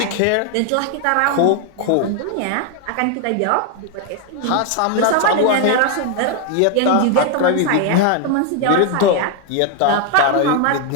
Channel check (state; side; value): different; both; correlation 0.01